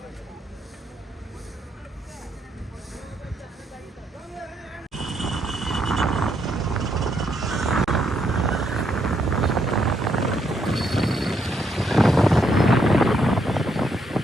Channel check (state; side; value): normal; both; correlation 0.75